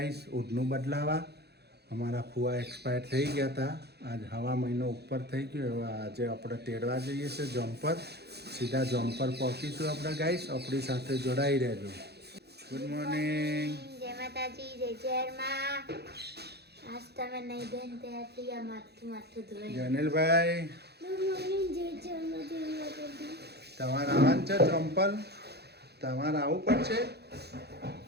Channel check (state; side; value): late; left; 0.48 ms